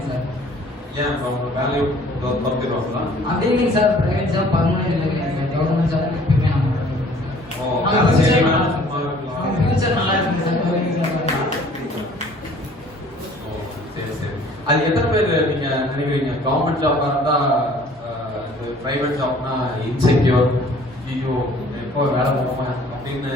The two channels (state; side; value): normal; both; correlation 0.54